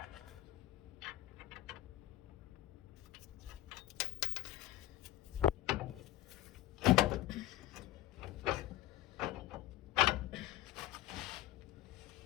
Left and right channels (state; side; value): quieter; right; 15.3 dB